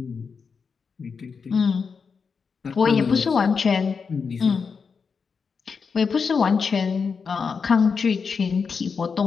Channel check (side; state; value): right; quieter; 5.5 dB